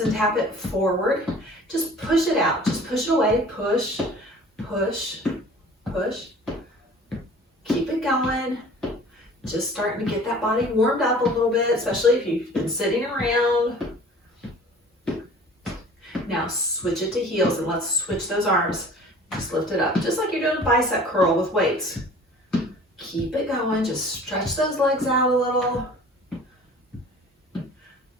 and tap it forward. Just push it out. Just push it away. Push, push, push. Keep it going. Just starting to get that body warmed up a little bit, especially if you've been sitting around. Now switch it to heels and let's switch those arms. Just lift it up, just like you're doing a bicep curl with weights. Keep it going, just stretch those legs out a little.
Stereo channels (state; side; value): normal; both; correlation 0.46